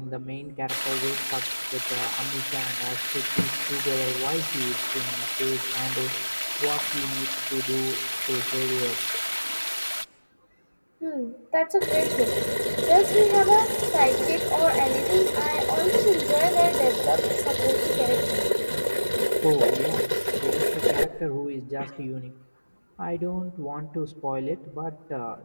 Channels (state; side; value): inverted; both; correlation -1.00